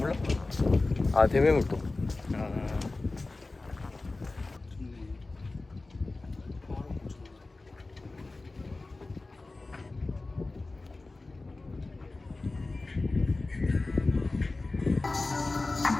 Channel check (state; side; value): quieter; right; 3.3 dB